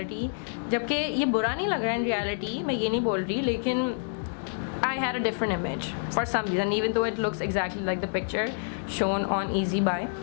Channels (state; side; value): silent; right; digital silence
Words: जबकि ये बुरा नहीं लग रहा है इन रियलिटी, मैं ये नहीं बोल रही, लेकिन I had a different image for some reason even though it looks exactly like the picture shown on Easy Buy.